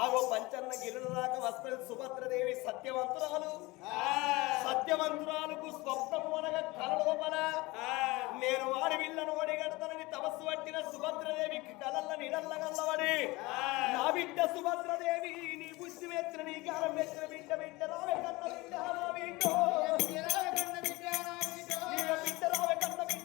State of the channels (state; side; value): quieter; right; 22.3 dB